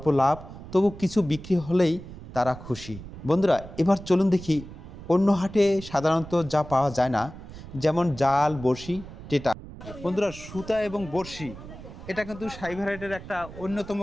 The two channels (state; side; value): noise; right; rumble, 14 dB below the sound